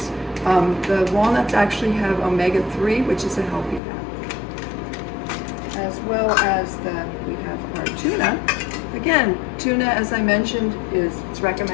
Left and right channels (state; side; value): drops out; right; at 3.8 s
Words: The walnuts actually have omega-3, which is a healthy fat. As well as we have our tuna. Again, tuna, as I mentioned, it's